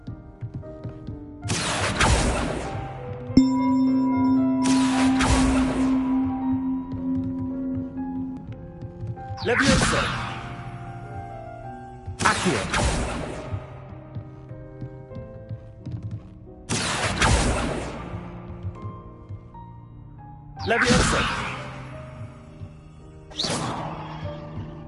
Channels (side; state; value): both; identical; correlation 1.00